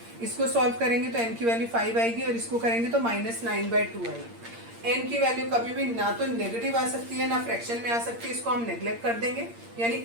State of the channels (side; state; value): left; late; 8.7 ms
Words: इसको सॉल्व करेंगे तो n की वैल्यू 5 आएगी और इसको करेंगे तो -9/2 आएगी। n की वैल्यू कभी भी ना तो नेगेटिव आ सकती है ना फ्रैक्शन में आ सकती है, इसको हम नेग्लेक्ट कर देंगे, यानी